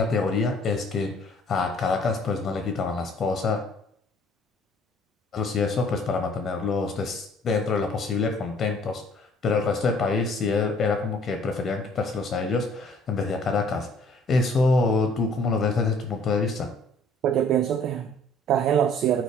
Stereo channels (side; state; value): both; normal; correlation 0.56